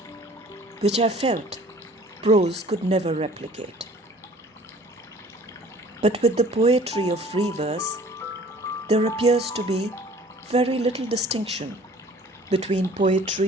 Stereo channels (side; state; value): both; normal; correlation 0.51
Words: which I felt prose could never replicate. But with the poetry of free verse, there appears to be very little distinction between